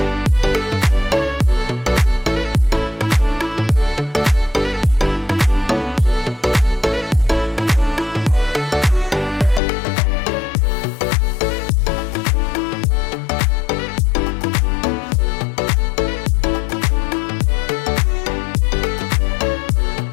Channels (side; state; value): right; drops out; at 9.6 s